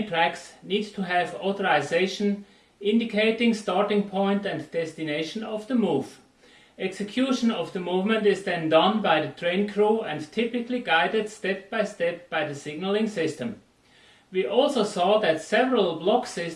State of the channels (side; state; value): both; identical; correlation 1.00